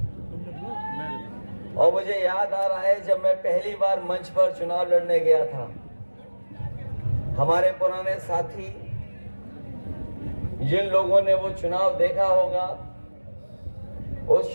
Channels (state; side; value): inverted; both; correlation -1.00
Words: और मुझे याद आ रहा है जब मैं पहली बार मंच पर चुनाव लड़ने गया था, हमारे पुराने साथी जिन लोगों ने वो चुनाव देखा होगा, उस